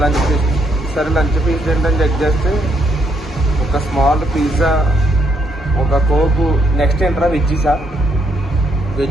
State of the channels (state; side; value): normal; both; correlation 0.74